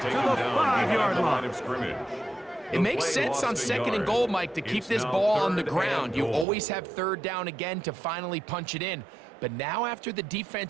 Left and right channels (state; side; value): drops out; left; at 6.5 s